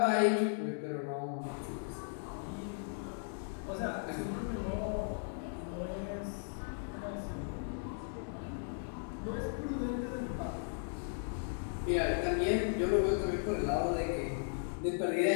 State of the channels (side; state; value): right; silent; digital silence